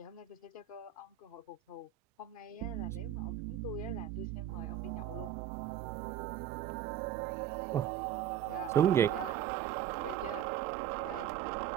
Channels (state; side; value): quieter; left; 10.3 dB